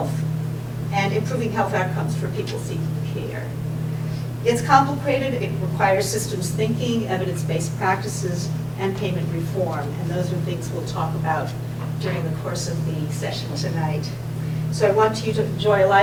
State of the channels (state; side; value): identical; both; correlation 1.00